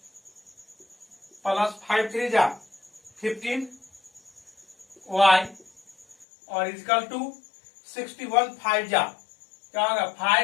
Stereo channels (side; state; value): right; drops out; at 6.2 s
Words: प्लस 5 3 जा 15y, और इक्वल टू 61 5 जा क्या होगा